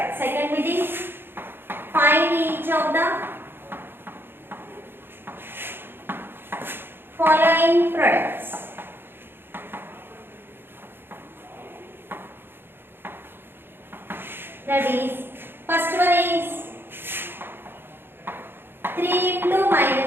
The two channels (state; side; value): late; left; 0.10 ms